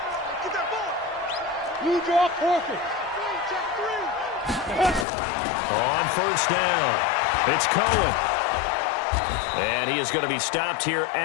Get that ball. Blue draw forfeit. Check 3. On first down, it's Cohen. And he is going to be stopped here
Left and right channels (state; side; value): drops out; right; at 5.1 s